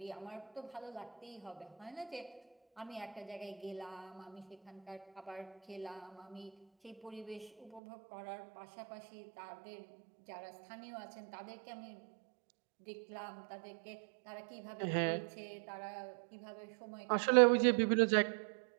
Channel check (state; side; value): drops out; left; at 7.8 s